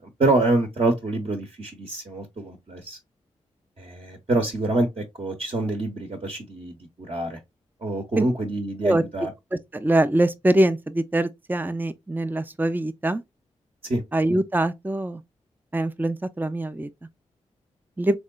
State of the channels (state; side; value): normal; both; correlation 0.81